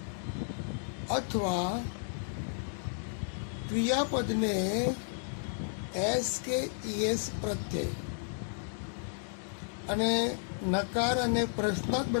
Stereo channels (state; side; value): silent; right; digital silence